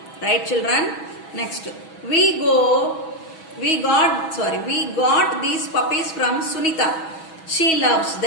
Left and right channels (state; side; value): late; right; 6.2 ms